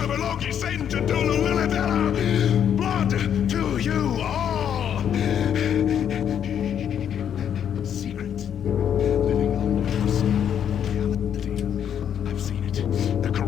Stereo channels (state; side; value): quieter; right; 9.0 dB